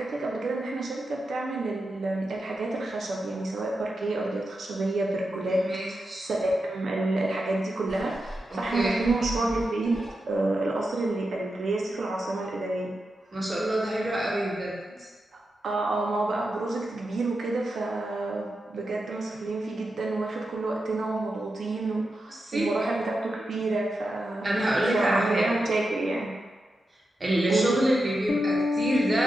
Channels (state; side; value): normal; both; correlation 0.89